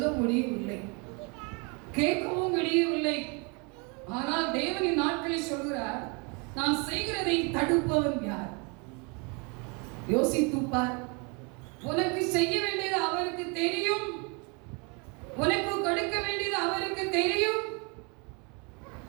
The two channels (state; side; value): quieter; left; 32.1 dB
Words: முடியவில்லை, கேட்கவும் முடியவில்லை. ஆனால் தேவனின் நாட்களில் சொல்கிறார், நான் செய்கிறதை தடுப்பவன் யார்? யோசித்துப்பார். உனக்கு செய்ய வேண்டியது அவருக்கு தெரியும், உனக்கு கொடுக்க வேண்டியது அவருக்கு தெரியும்.